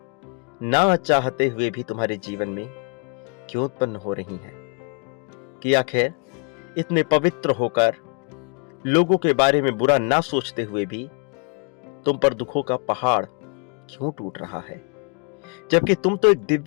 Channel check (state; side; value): quieter; right; 35.3 dB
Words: ना चाहते हुए भी तुम्हारे जीवन में क्यों उत्पन्न हो रही हैं? कि आखिर इतने पवित्र होकर, लोगों के बारे में बुरा ना सोचते हुए भी तुम पर दुखों का पहाड़ क्यों टूट रहा है? जबकि तुम तो एक